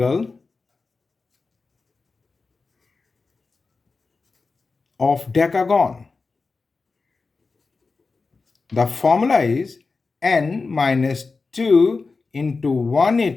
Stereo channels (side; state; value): right; quieter; 4.2 dB